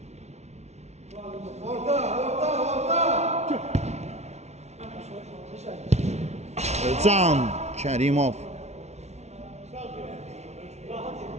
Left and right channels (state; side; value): late; left; 0.32 ms